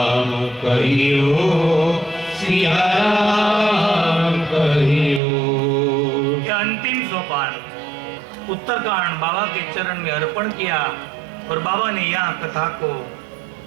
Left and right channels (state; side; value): drops out; left; at 5.2 s